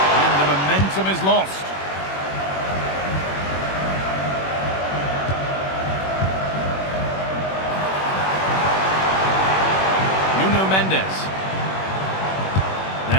And the momentum is lost. Mendes.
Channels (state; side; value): late; right; 21 ms